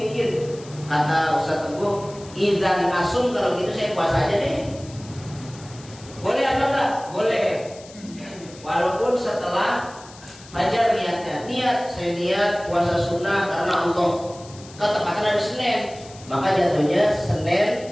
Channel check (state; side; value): noise; left; hiss, 20 dB below the sound